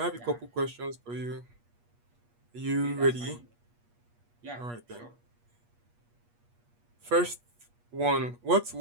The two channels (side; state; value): left; late; 8.4 ms